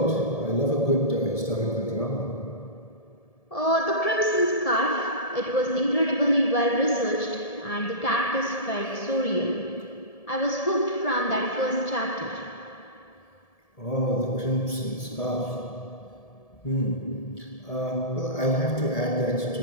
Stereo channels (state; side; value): late; right; 1.7 ms